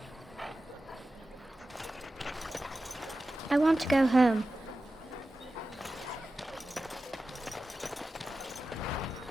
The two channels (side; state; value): both; normal; correlation 0.94